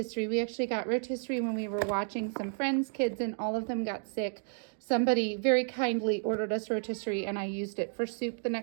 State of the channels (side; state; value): left; silent; 57 dB below the other